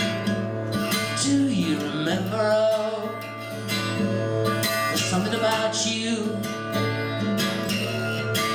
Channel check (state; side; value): identical; both; correlation 1.00